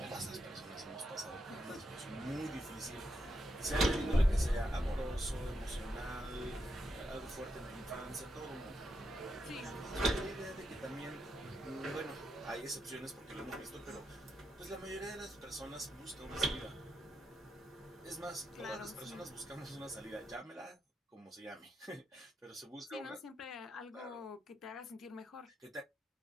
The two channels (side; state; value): both; normal; correlation 0.83